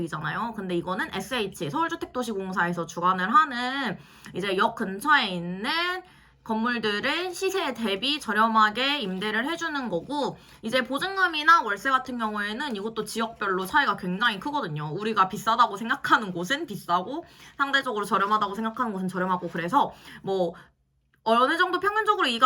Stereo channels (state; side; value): identical; both; correlation 1.00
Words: 근데 이거는 SH, 서울주택도시공사에서 주관을 하는 이제 역 근처에 있는 건물들을 시세에 대비 저렴하게 임대를 해주는 거고, 이제 보증금이나 월세 같은 경우에는 이것도 지역별로 차이가 굉장히 크거든요. 우리가 비싸다고 생각하는 곳은 비싸고 상대적으로 저렴하다고 생각하는 곳은 저렴하고, 그래서 뭐 어느 정도 평균적으로 이